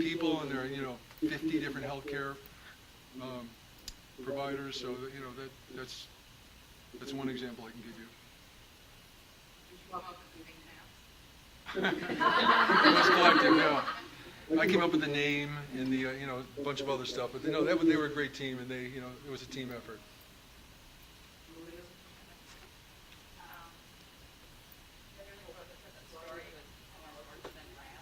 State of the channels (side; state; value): both; identical; correlation 1.00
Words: and they're 50 different healthcare providers. So that's one example I can give you. Did you come up with the pink pants? It was collective, yeah. I came up with the name and the a bunch of other stuff, but they were a great team, and it was a team effort. Everything about that story was more important than